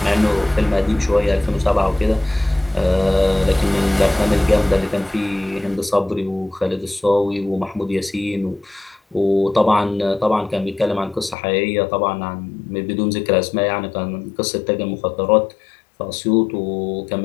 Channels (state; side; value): drops out; right; at 11.4 s